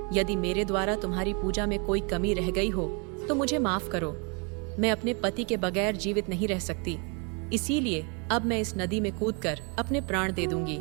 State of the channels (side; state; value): left; quieter; 34.3 dB